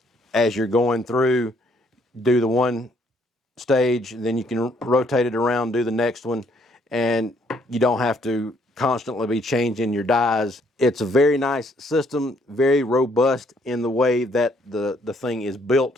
as you're going through, do the one stage, then you can rotate it around, do the next one, and you don't have to constantly be changing your dies. It's a very nice system, very robust in the way that the thing is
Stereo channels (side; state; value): both; normal; correlation 0.67